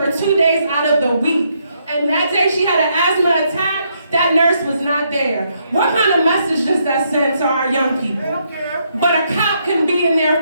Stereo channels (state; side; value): inverted; both; correlation -0.75